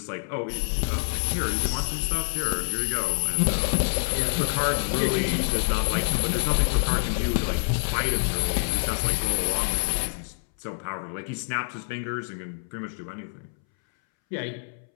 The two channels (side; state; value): right; silent; 61 dB below the other